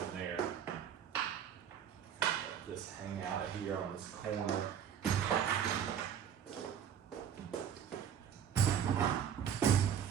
there. Just hang out of here on this corner.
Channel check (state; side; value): quieter; left; 8.7 dB